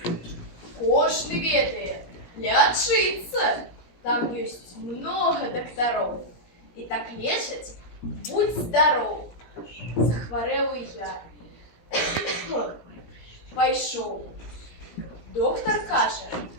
Кожный ведает, лечиться. Там есть много докторов. И так лечать, будь здоров. Захворел и я. Пойшов. Доктор каже,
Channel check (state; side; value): late; right; 17 ms